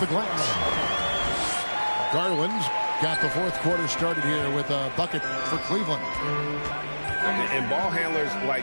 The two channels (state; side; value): inverted; both; correlation -1.00